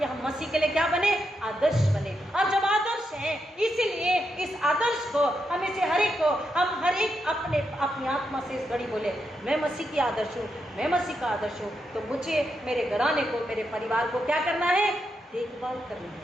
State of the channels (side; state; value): both; normal; correlation 0.83